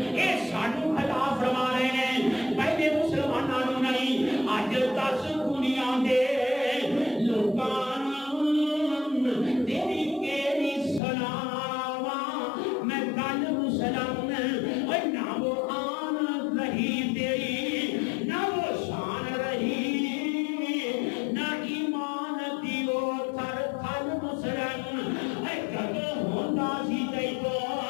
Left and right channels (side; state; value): right; drops out; at 11.0 s